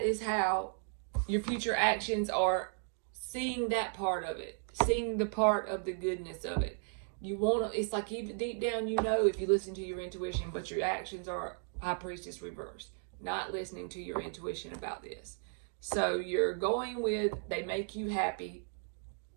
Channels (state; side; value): silent; left; 54 dB below the other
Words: is how your future actions are seeing that part of it, seeing the part of the goodness of it. You want to, it's like even deep down, you know, if you listen to your intuition, but your actions are High Priestess reversed. Not listening to your intuition about this. So you're going with, they make you happy.